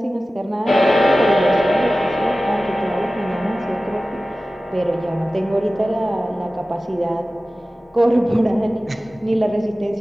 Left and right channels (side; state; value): both; normal; correlation 0.96